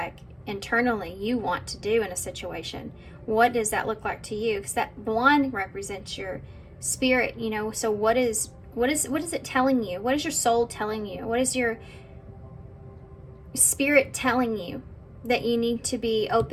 internally you want to do in a situation? What does that look like to you? Because that blonde represents your spirit, you know. So what is it telling you? What is your soul telling you? What is your spirit telling you that you need to be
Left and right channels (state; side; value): identical; both; correlation 1.00